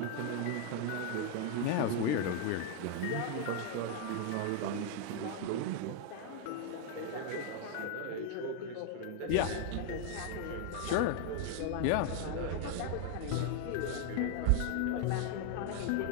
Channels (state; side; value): different; both; correlation 0.00